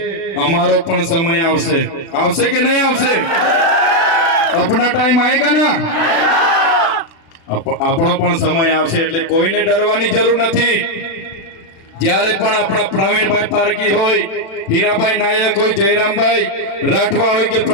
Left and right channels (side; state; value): right; late; 36 ms